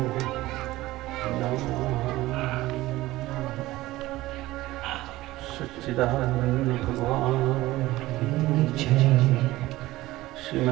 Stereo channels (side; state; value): left; quieter; 17.6 dB